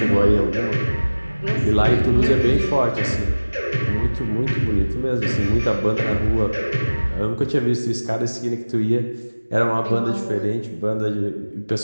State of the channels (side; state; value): both; inverted; correlation -1.00